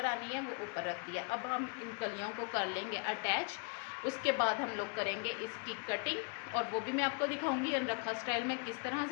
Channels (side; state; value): right; quieter; 33.9 dB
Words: आनी है वो ऊपर रख दिया। अब हम इन कलियों को कर लेंगे अटैच। उसके बाद हम लोग करेंगे इसकी कटिंग, और वो भी मैं आपको दिखाऊंगी अनरखा स्टाइल में किस तरह